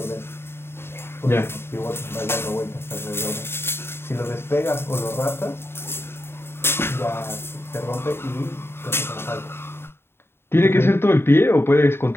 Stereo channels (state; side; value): late; right; 0.11 ms